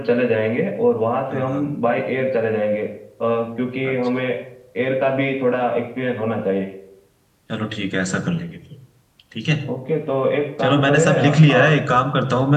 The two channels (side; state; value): both; identical; correlation 1.00